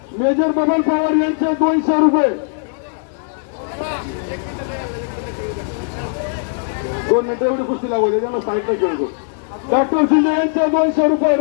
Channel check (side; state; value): right; silent; 67 dB below the other